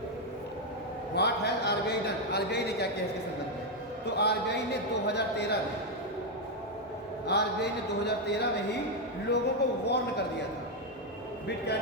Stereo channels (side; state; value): both; normal; correlation 0.02